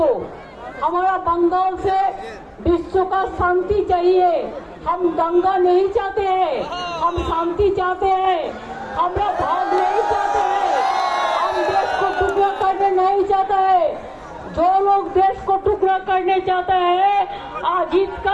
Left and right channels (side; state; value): both; identical; correlation 1.00